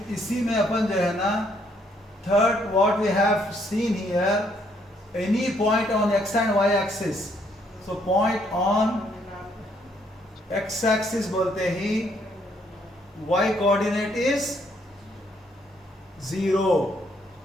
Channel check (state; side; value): normal; both; correlation 0.69